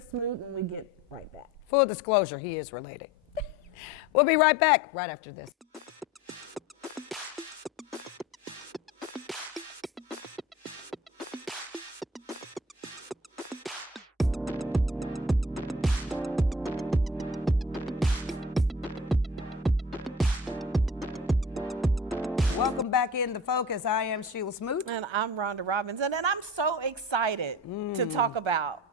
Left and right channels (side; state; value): both; normal; correlation 0.41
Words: Smoot, when we get right back. Full disclosure, he is related. We'll be right back right after this. Welcome back in the focus. I am Sheila Smoot. And I'm Rhonda Robinson, and I'm so excited to talk about